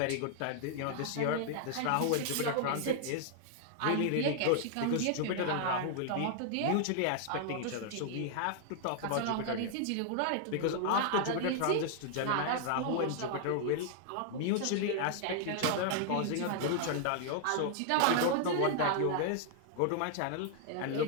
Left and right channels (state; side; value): different; both; correlation 0.00